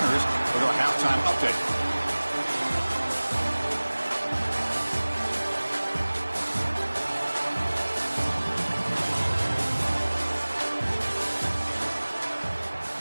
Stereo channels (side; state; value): both; inverted; correlation -1.00